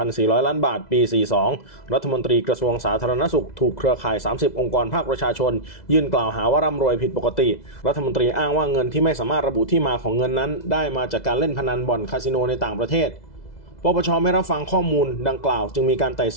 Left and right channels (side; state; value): right; late; 2.0 ms